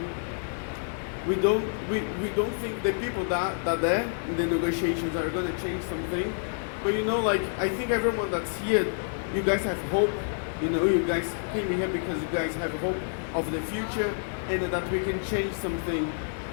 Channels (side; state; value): right; silent; digital silence